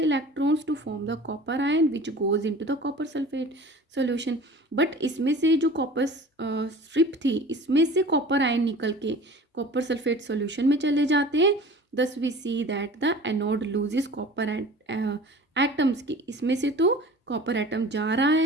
electrons to form the copper ion which goes into the copper sulfate solution। but इसमें से जो कॉपर स्ट्रिप थी इसमें से कॉपर आयन निकल के कॉपर सल्फेट सॉल्यूशन में चले जाते हैं। thus we see that the anode loses copper atoms की, इसमें से तो कॉपर एटम जा रहा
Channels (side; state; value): both; normal; correlation 0.42